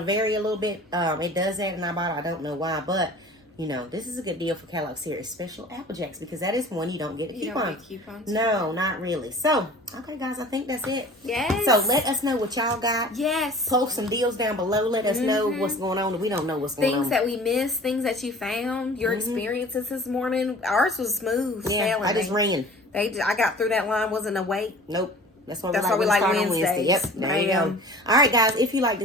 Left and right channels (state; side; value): normal; both; correlation 0.44